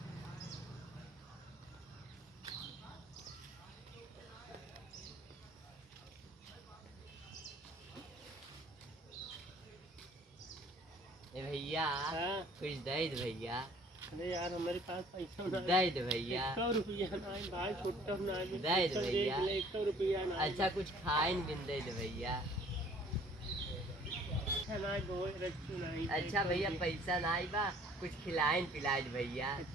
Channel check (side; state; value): both; normal; correlation 0.55